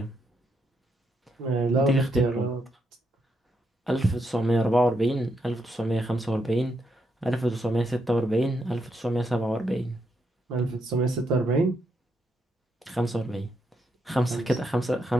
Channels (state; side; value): normal; both; correlation 0.80